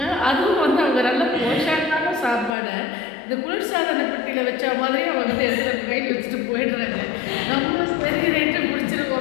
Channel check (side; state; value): right; drops out; at 2.5 s